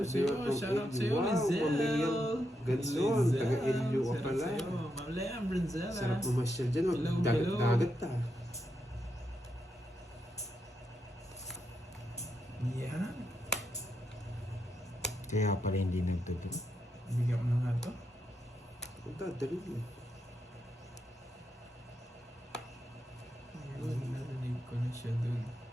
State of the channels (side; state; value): both; normal; correlation 0.83